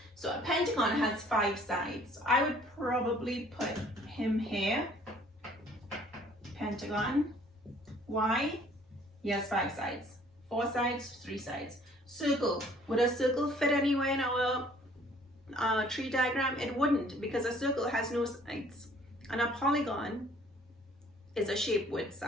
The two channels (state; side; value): normal; both; correlation 0.57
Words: So a pentagon has 5 sides. I would probably put him here. Pentagon. Why? He has 5 sides. 4 sides, 3 sides. Circle. Would a circle fit anywhere in our tree diagram? It wouldn't, because a circle has no sides. And a polygon is a shape with